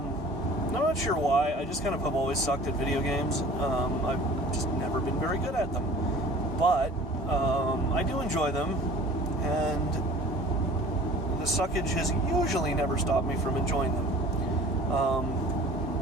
not sure why. I just kind of have always sucked at video games. I've just never been very good at them. But I do enjoy them, and the suckage has usually never stopped me from enjoying them.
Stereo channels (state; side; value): normal; both; correlation 0.45